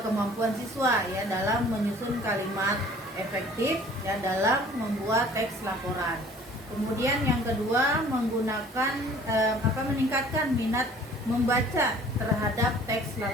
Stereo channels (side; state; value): both; normal; correlation 0.51